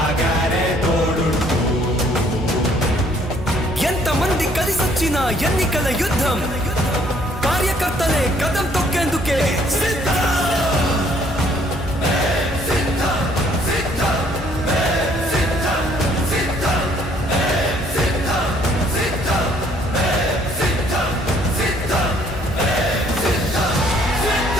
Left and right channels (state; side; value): normal; both; correlation 0.63